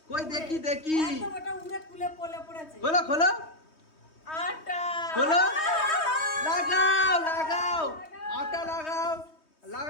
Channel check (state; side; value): late; right; 3.2 ms